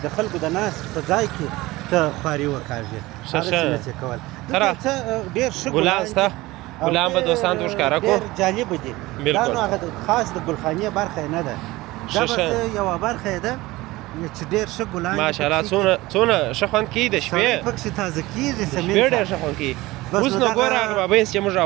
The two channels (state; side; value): quieter; left; 19.6 dB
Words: د خلکو د ناستې په ځای کې ته خواري وکاږې هغسې نه شې کولی. دلته څه ډېر ښه ګلان شته ګلان به دوستانو ته ښکاره کړو ډېر جالبه دي. دا نو هغه خاص د ګلخانې برخه نه ده دا بس یوه برخه یې ده چې ډېر ښه ګلان ماشاءالله څونه ښه خوند کوي د شپې پکښې تازه کېږي سمین شپې ډېر ښه خوند کوي. اوس نو ګوره هغه بابیس چې موږ